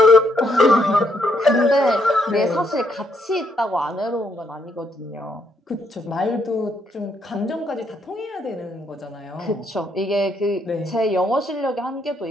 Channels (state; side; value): normal; both; correlation 0.74